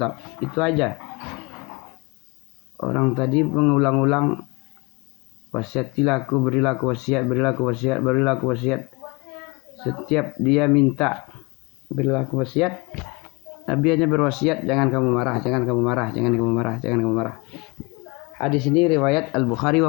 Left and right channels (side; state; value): right; quieter; 27.0 dB